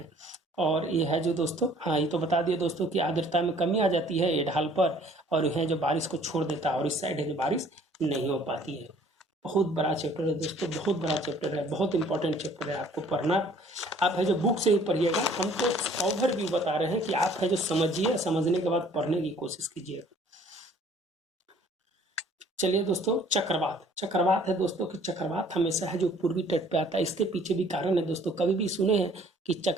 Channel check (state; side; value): normal; both; correlation 0.56